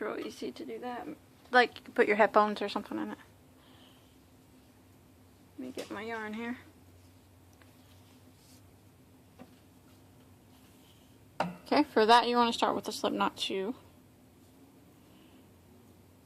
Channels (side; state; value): both; identical; correlation 1.00